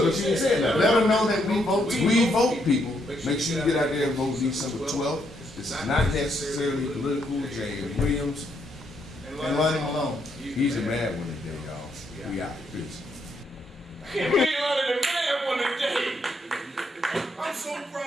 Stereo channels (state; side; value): normal; both; correlation 0.75